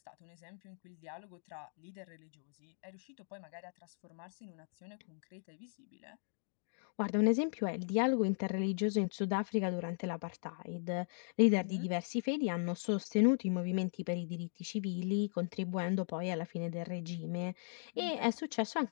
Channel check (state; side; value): silent; right; digital silence